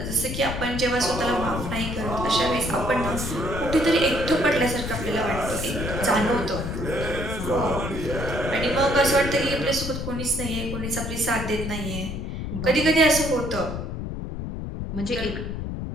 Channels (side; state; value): left; noise; rumble, 5 dB below the sound